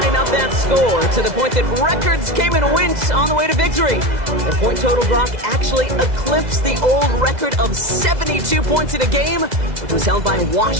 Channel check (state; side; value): late; left; 2.0 ms